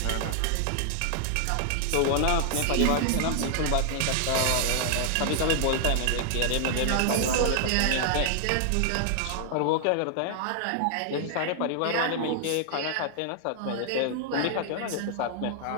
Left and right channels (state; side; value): different; both; correlation 0.00